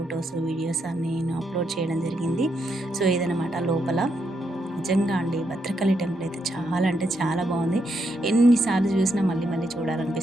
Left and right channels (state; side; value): normal; both; correlation 0.80